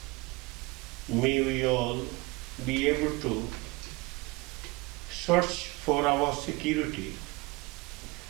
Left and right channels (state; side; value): quieter; left; 24.5 dB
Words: May we all be able to search for our security